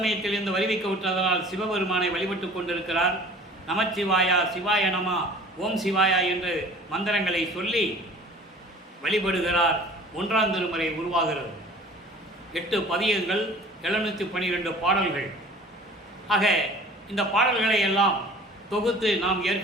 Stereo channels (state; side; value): normal; both; correlation 0.46